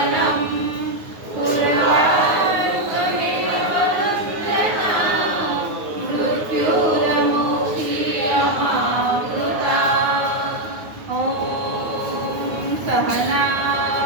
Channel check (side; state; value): left; late; 9.5 ms